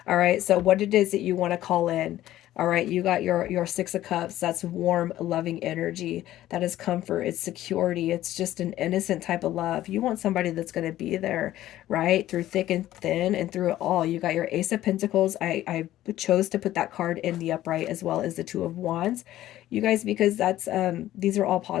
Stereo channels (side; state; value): right; quieter; 14.0 dB